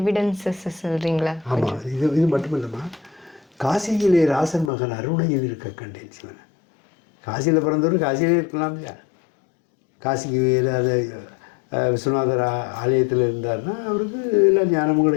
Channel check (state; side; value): drops out; right; at 4.7 s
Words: எவிடன்சஸ் சொல்கிறீங்களா? ஆமாம், இது மட்டும் இல்லைம்மா, காசியிலே ராசன் மகன் அருணையில் இருக்க கண்டேன் சிவனை. காசியில் பிறந்தவர் காசியிலே இருக்கலாம் இல்லையா? காசிக்கு அதை விஸ்வநாதர் ஆலயத்தில் இருந்தார்னா அவருக்கு எல்லா ஞானமும்